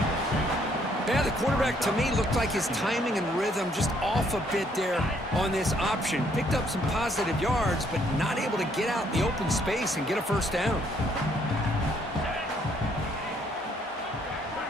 Yeah, the quarterback, to me, looked like his timing and rhythm just off a bit there on this option. Picked up some positive yards, but not able to get out in the open space and get a first down.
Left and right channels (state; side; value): normal; both; correlation 0.68